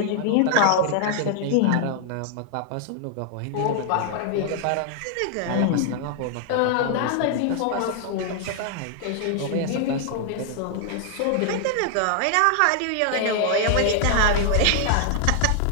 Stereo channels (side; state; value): both; different; correlation 0.00